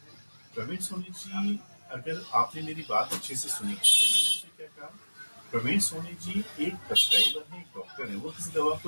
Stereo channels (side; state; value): both; inverted; correlation -1.00